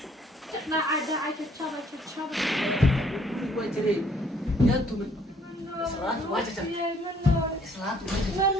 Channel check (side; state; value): both; normal; correlation 0.62